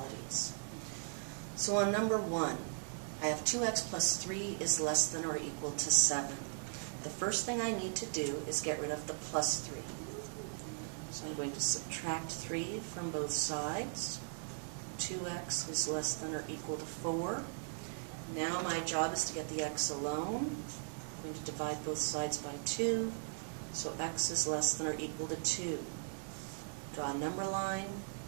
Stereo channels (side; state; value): left; silent; 52 dB below the other